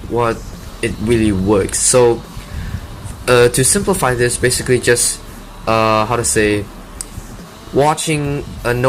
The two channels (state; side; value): identical; both; correlation 1.00